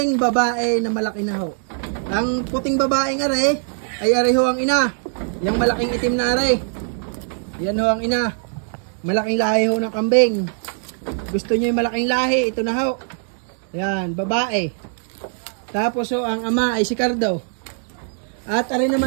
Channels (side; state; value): left; silent; 60 dB below the other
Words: babae na malaki na ho. Ang puting babaeng aray ay aray ho ang ina. Yung malaking itim na aray. Yan ho ang ina. Malaking lahi ho ng kambing. Gusto niyo yung malaking lahi, ito na ho. Yan, babae. Tapos ho, ang ama ay si Cardo. At arin